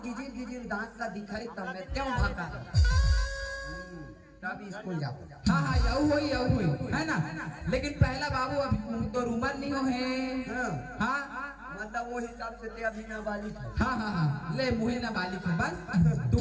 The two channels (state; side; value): identical; both; correlation 1.00